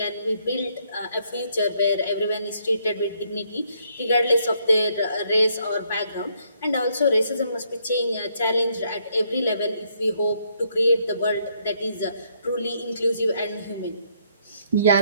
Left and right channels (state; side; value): inverted; both; correlation -0.71